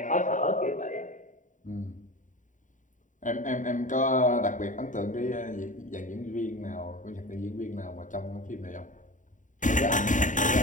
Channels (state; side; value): late; right; 0.37 ms